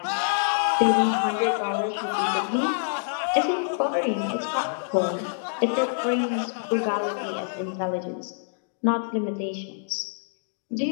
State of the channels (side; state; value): right; silent; digital silence